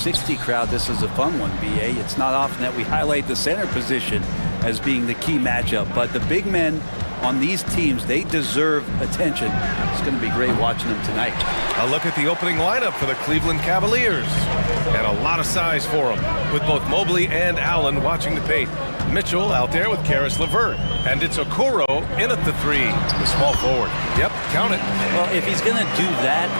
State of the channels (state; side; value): inverted; both; correlation -1.00